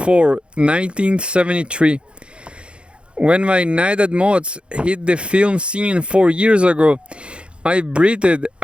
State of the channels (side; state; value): left; late; 0.057 ms